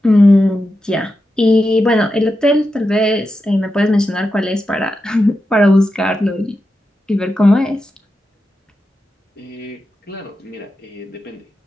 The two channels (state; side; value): normal; both; correlation 0.89